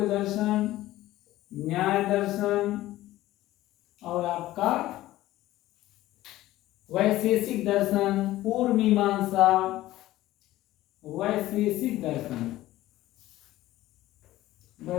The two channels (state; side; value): quieter; right; 15.8 dB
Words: दर्शन, न्याय दर्शन, और आपका वैशेषिक दर्शन, पूर्व मीमांसा, वैशेषिक दर्शन,